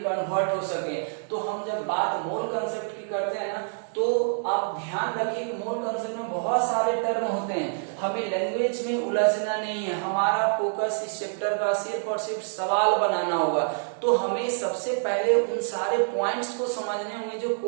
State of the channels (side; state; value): left; silent; digital silence